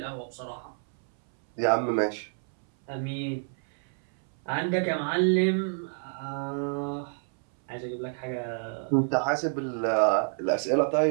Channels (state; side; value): silent; left; 59 dB below the other